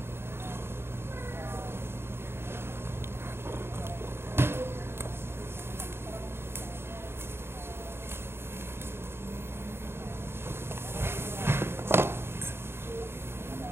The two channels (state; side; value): late; left; 0.11 ms